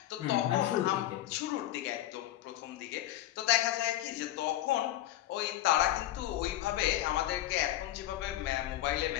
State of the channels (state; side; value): quieter; right; 14.2 dB